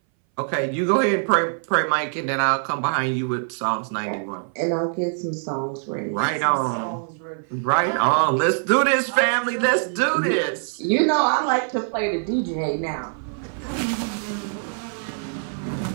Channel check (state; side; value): silent; left; 61 dB below the other